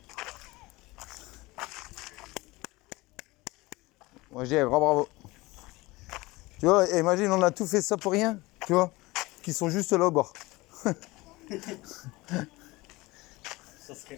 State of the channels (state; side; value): quieter; right; 21.5 dB